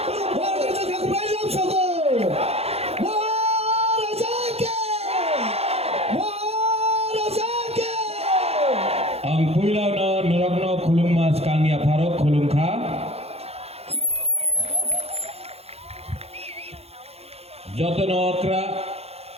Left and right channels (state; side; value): late; left; 0.29 ms